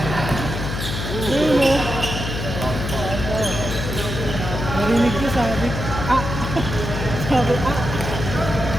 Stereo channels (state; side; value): noise; left; hum, 4 dB below the sound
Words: Ayun o. Narinig ko sabi. Sabi.